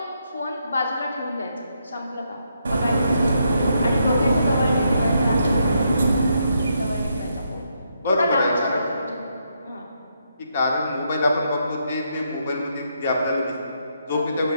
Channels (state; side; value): inverted; both; correlation -0.78